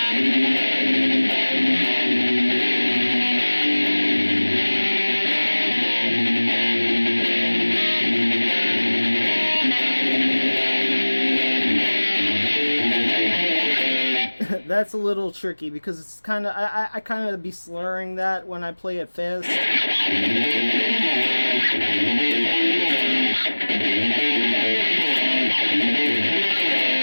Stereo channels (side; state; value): both; inverted; correlation -1.00